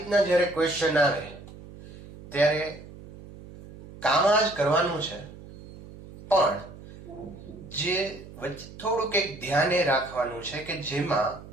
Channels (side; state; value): right; noise; hum, 17 dB below the sound